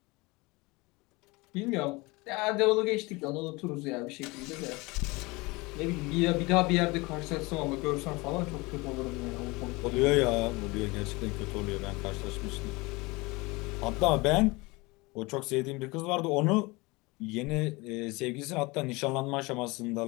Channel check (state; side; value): quieter; right; 24.3 dB